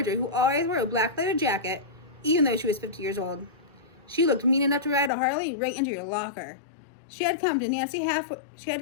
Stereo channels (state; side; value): drops out; right; at 5.1 s